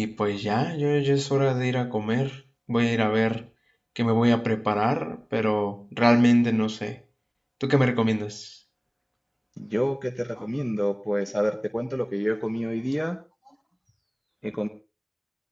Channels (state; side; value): identical; both; correlation 1.00